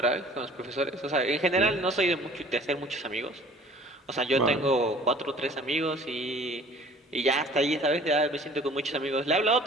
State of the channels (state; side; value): normal; both; correlation 0.50